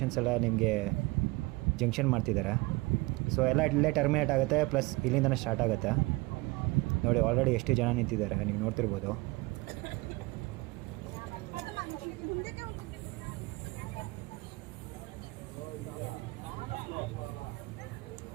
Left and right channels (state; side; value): quieter; left; 22.9 dB